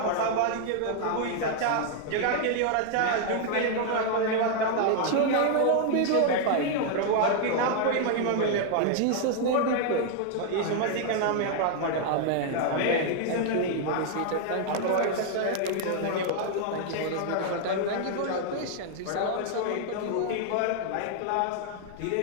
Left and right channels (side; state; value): both; different; correlation 0.00